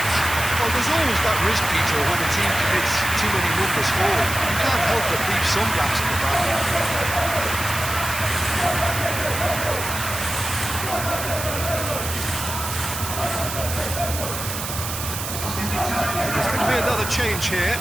Well, there's always that risk, Peter, when a team commits too many numbers forward. You can't help but leave some gaps in the back. There's going to be another change here.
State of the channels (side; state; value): right; noise; hiss, 6 dB below the sound